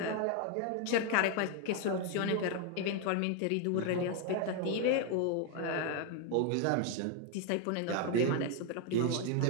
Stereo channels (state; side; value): different; both; correlation 0.01